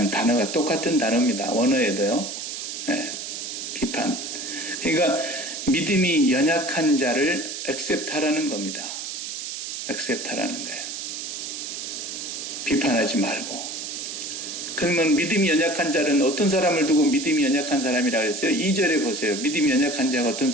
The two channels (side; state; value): right; noise; hiss, 6 dB below the sound